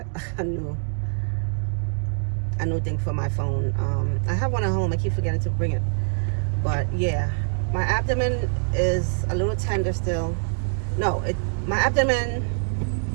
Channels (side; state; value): left; silent; digital silence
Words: a new thing for my phone. I have one at home. I keep forgetting to bring it. But yeah, my abdomen is a little tender still. No, my abdomen